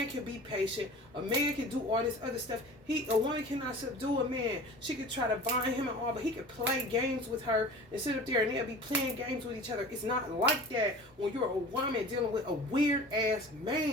can be patient. A man can do all this other stuff. A woman cannot subdue a man. She could try to bind him and all, but he could play games with her and sit up there and they'll be playing games with each other. It's not like that when you're a woman dealing with a weird ass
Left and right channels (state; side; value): normal; both; correlation 0.40